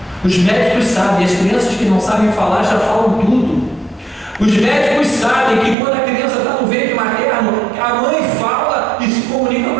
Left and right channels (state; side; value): drops out; left; at 5.8 s